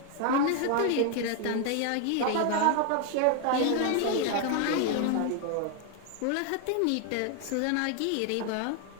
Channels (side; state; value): both; different; correlation 0.00